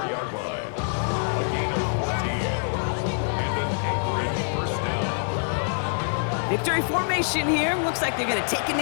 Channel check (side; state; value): right; silent; 61 dB below the other